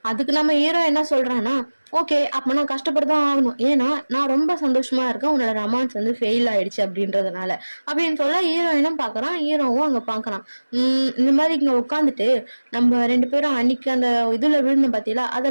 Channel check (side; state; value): both; inverted; correlation -1.00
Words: அதுக்கு நம்ம ஹீரோ என்ன சொல்றான்னா, ஓகே அப்ப நான் கஷ்டப்பட்டுதான் ஆகணும், ஏன்னா நான் ரொம்ப சந்தோஷமா இருக்கேன் உன்னோட ரொமான்ஸ் வந்து ஃபெயில் ஆயிடுச்சு அப்படின்றதுனால அப்படின்னு சொல்ல, ஹீரோயினும் பாக்குறான், ஹீரோவும் அங்க பாக்குறான். இந்த மாதிரி இங்க உட்காந்துட்டு நம்ம 2 பேரும் அன்னைக்கு அந்த இதுல விழுந்த பாத்தீங்களா,